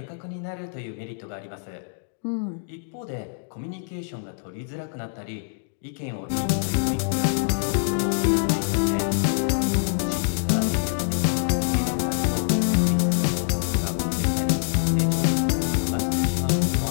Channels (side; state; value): right; silent; digital silence